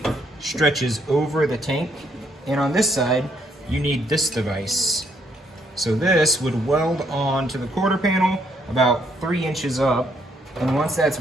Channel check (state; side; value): normal; both; correlation 0.71